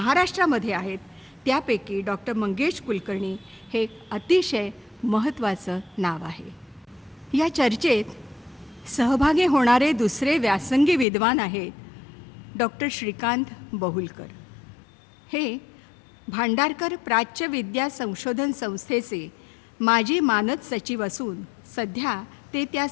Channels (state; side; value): drops out; right; at 11.1 s